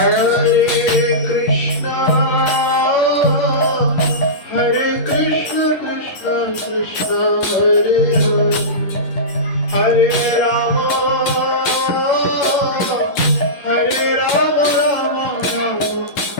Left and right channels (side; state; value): right; late; 11 ms